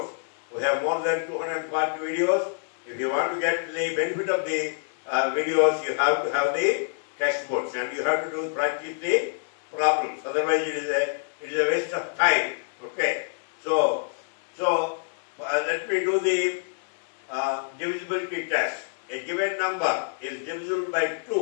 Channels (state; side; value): silent; right; digital silence